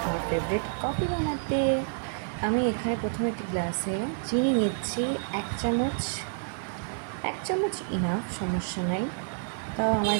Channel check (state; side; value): silent; left; digital silence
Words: আমার ফেভারিট কফি বানাতে। আমি এখানে প্রথমে একটি গ্লাসে চিনি নিচ্ছি, এক চামচ ইনাফ, সমস্যা নাই। তাও আমার